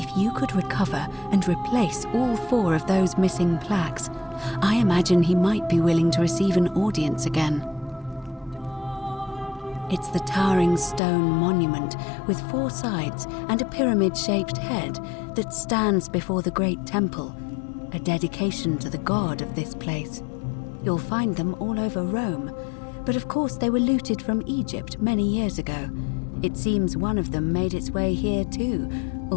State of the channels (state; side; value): drops out; right; at 11.0 s